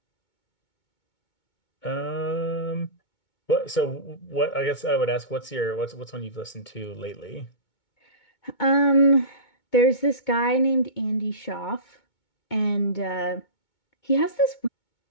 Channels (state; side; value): late; right; 2.2 ms